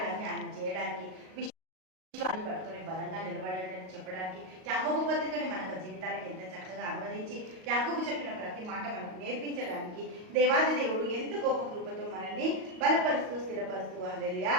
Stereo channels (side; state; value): left; late; 38 ms